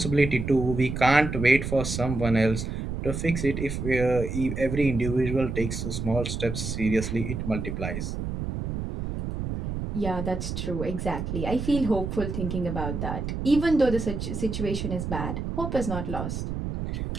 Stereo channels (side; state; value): right; noise; rumble, 4 dB below the sound